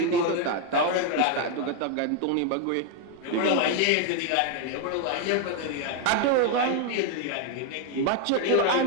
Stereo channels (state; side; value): different; both; correlation 0.00